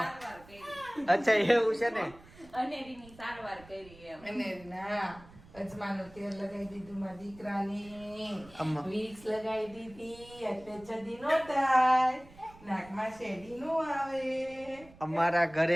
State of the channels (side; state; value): right; noise; rumble, 22 dB below the sound